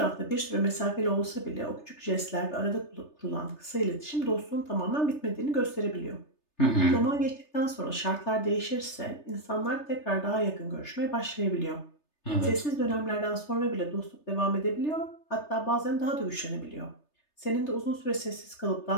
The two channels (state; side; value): late; right; 3.3 ms